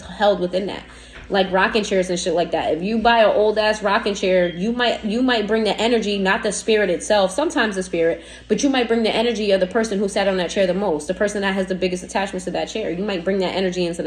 held within that. Like rocking chairs and shit like that. If you buy an old-ass rocking chair, you might bring the energy, not the spirit itself, sometimes the spirit, but you might bring the energy of the person who sat on that chair the most, the person that has the biggest attachments to that chair. You might bring that energy into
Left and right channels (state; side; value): identical; both; correlation 1.00